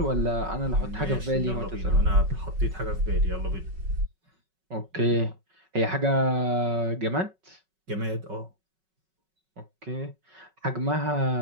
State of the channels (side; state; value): left; late; 5.4 ms